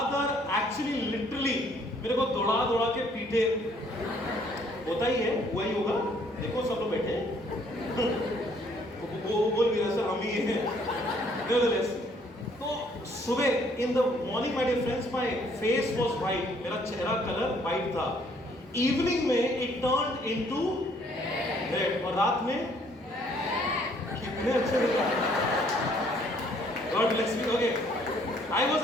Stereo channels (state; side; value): normal; both; correlation 0.63